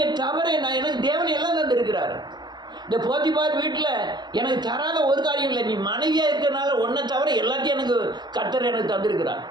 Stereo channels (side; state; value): left; late; 0.21 ms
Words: தவறை எனக்கு தேவன் எல்லாம் தந்திருக்கிறார். இந்த போத்திபார் வீட்டில் எனக்கு தராத ஒரு காரியம் இல்லை. நீ மனைவியாக இருக்கிறனால ஒன்றை தவிர எல்லாத்தையும் எனக்கு கர்த்தர் எனக்கு தந்திருக்கிறார்.